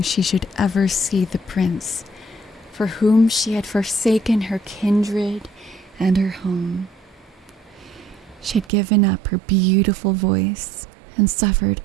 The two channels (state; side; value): drops out; left; at 8.7 s